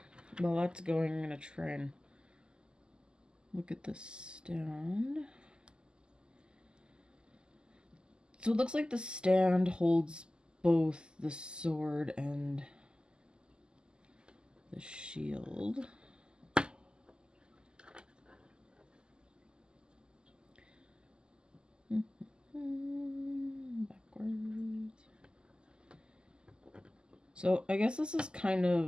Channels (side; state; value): left; late; 0.047 ms